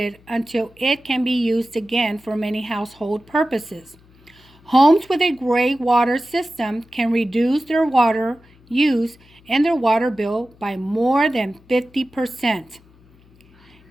until it can be used again for many household purposes. Homes with a gray water system can reduce their water use and their water bill by more than 50%.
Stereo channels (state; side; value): noise; left; hum, 28 dB below the sound